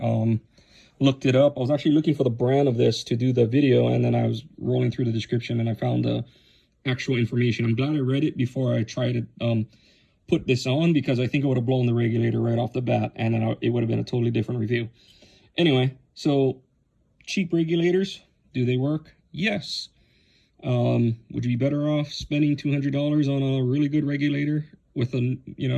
looked it up. I was actually looking for the brand of this to do the video, and then I was rolling through the description and I found the actual information. I'm glad I read it before I tried to put this on, because I think I would have blown the regulator right off the bat, and then it would have been a totally different review. Anyway, so cheap regulators, do they work? Yes. Would you be better off spending $200 on a really good regulator with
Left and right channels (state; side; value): identical; both; correlation 1.00